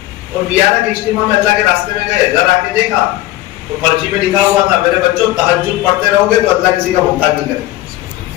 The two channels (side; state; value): right; quieter; 16.2 dB